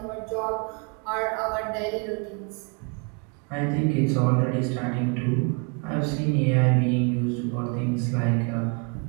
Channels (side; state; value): left; quieter; 35.1 dB